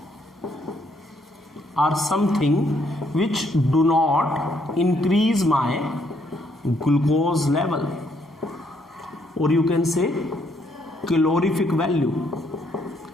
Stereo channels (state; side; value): normal; both; correlation 0.71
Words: are something which do not increase my glucose level, और you can say calorific value.